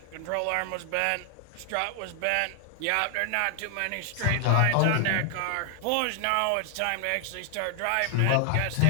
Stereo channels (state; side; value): different; both; correlation 0.00